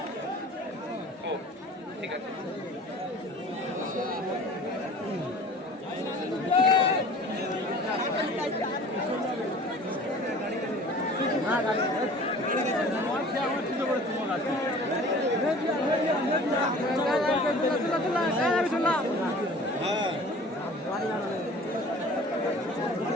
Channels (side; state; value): both; normal; correlation 0.45